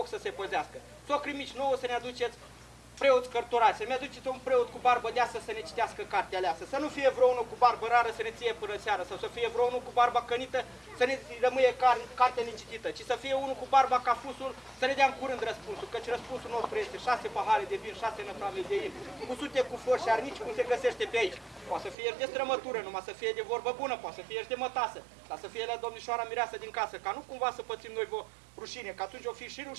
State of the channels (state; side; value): drops out; left; at 22.0 s